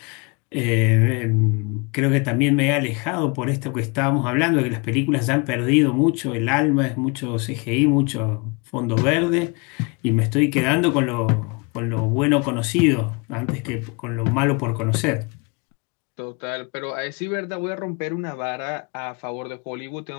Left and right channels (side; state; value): right; quieter; 30.9 dB